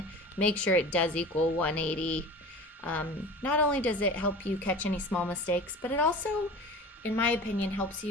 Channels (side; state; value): both; normal; correlation 0.36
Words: make sure it does equal 180. Not only does it help you catch any small mistakes, but it also, in my opinion, helps